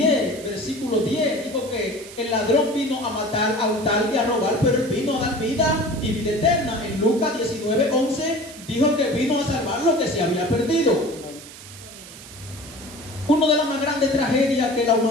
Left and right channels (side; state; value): right; noise; hiss, 16 dB below the sound